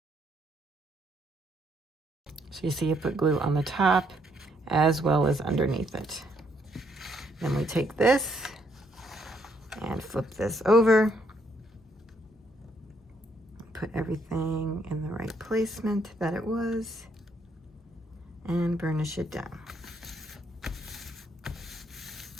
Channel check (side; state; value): both; normal; correlation 0.71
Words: So you see you put glue on the top as well as underneath it. Then we take this and flip this over. Put everything in the right placement that it was and burnish it down.